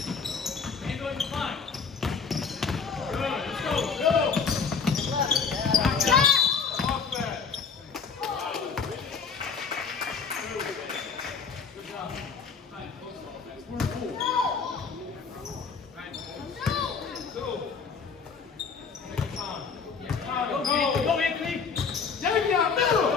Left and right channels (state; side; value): quieter; right; 5.6 dB